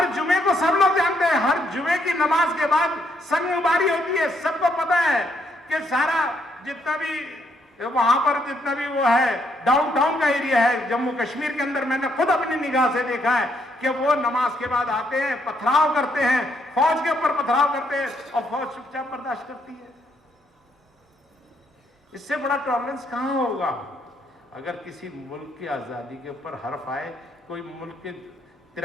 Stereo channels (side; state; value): both; normal; correlation 0.73